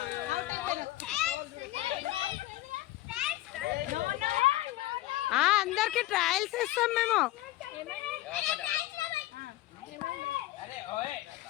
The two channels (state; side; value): quieter; right; 16.8 dB